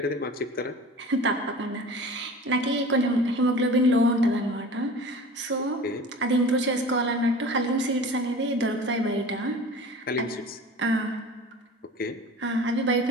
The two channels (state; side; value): normal; both; correlation 0.39